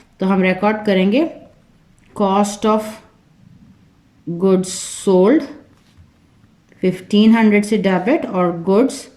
तो हम रिकॉर्ड करेंगे कॉस्ट ऑफ गुड्स सोल्ड 1,500 से डेबिट, और गुड्स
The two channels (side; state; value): both; identical; correlation 1.00